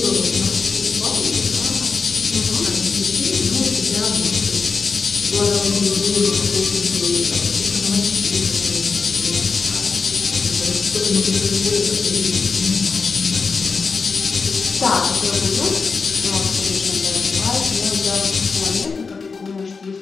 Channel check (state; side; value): quieter; right; 4.8 dB